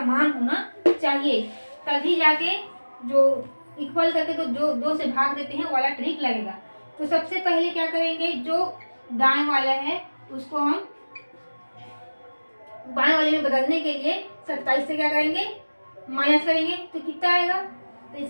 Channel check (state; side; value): inverted; both; correlation -1.00